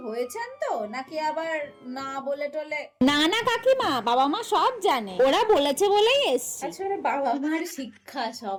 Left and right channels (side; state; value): both; identical; correlation 1.00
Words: হয়েছেন তো, নাকি আবার না বলে টলে? না না কাকিমা, বাবা মা সব জানে, ওরা বলেছে বলেই এসছে। আসলে বাবা মার শিক্ষা সব।